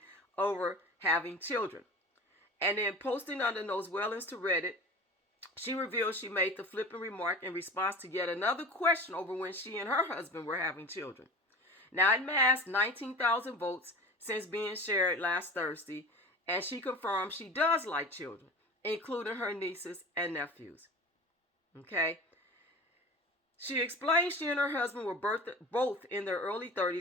over having children. And then posting under those Wellens to Reddit, she revealed she made the flippant remark in response to yet another question over when she and her husband were having children. Now, it amassed 19,000 votes since being shared last Thursday, and she confirmed she does like children, including her nieces and nephews. Okay? She explained she and her husband were both in their early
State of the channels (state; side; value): normal; both; correlation 0.34